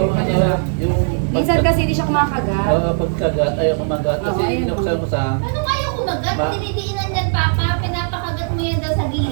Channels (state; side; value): silent; left; digital silence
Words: ano, yung Minsan kasi hindi siya kumakagat. pagkagat, ayaw kumagat. Kasi Oo, ayaw binuksan ko sa... Ano kayo kumagat? Ma- Dinidiinan yan, Papa. Pinapakagat mo yan daw sa